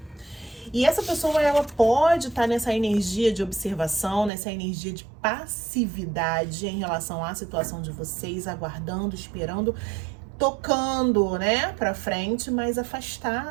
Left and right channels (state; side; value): drops out; left; at 4.3 s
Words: E essa pessoa, ela pode estar nessa energia de observação, nessa energia de passividade em relação à situação de vocês, aguardando, esperando, tocando, né, pra frente, mas